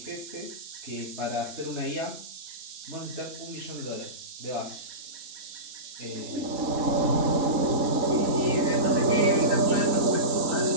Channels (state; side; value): late; left; 4.1 ms